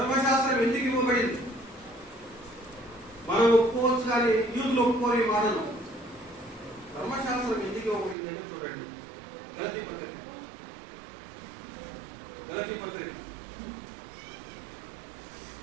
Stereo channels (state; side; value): drops out; left; at 8.2 s